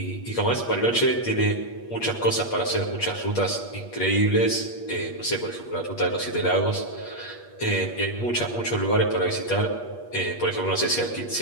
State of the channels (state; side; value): late; right; 8.5 ms